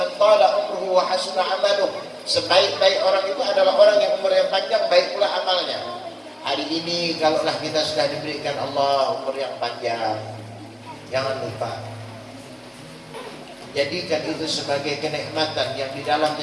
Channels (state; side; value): identical; both; correlation 1.00